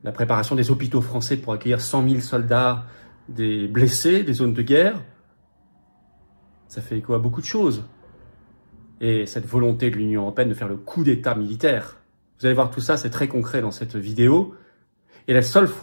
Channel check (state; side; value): inverted; both; correlation -1.00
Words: la préparation des hôpitaux français pour accueillir 100 000 soldats, des blessés, des zones de guerre. Ça fait écho à beaucoup de choses. Et cette volonté de l'Union européenne de faire le coup d'État militaire. Vous allez voir tout ça, c'est très concret dans cette vidéo. Et la seule